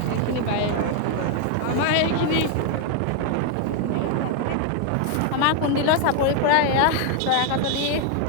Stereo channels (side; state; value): both; different; correlation 0.00